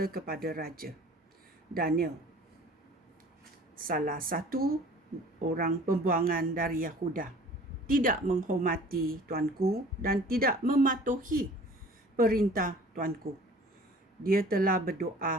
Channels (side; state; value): both; normal; correlation 0.48